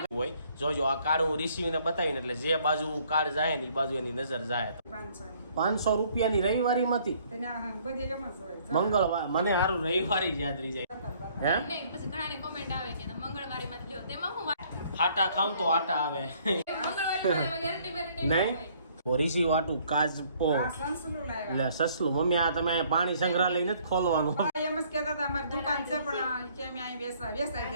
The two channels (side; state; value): both; inverted; correlation -0.62